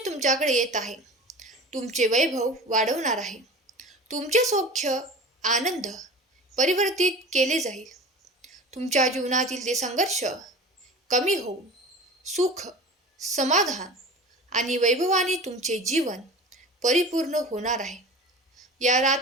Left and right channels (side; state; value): both; normal; correlation 0.36